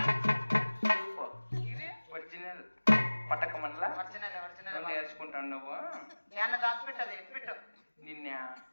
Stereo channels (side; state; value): both; inverted; correlation -1.00